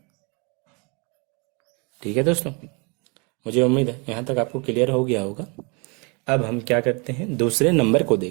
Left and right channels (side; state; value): left; quieter; 31.8 dB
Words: ठीक है दोस्तों। मुझे उम्मीद है यहाँ तक आपको क्लियर हो गया होगा। अब हम क्या करते हैं दूसरे नंबर को